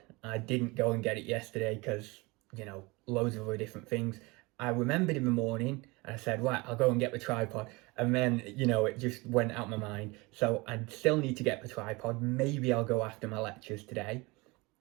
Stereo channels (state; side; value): quieter; left; 24.7 dB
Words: I didn't go and get it yesterday because, loads of other different things. I remembered in the morning and I said, right, I'll go and get the tripod. And then, it just went out my mind. So I still need to get the tripod. Maybe I'll go after my lectures today.